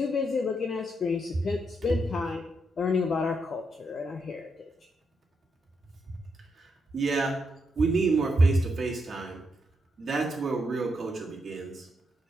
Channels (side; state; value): both; normal; correlation 0.81